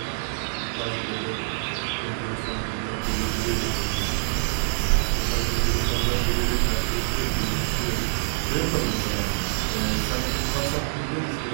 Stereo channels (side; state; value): left; silent; digital silence